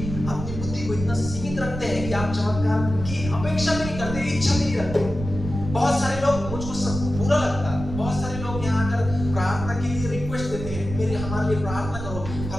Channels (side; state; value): right; noise; rumble, 8 dB below the sound